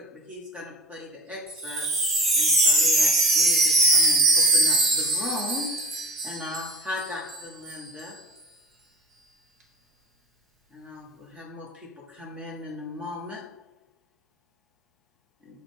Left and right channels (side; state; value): both; normal; correlation 0.32